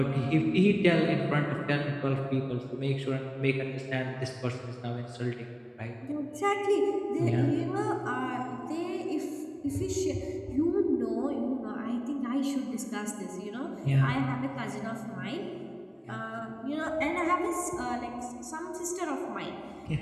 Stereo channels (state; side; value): identical; both; correlation 1.00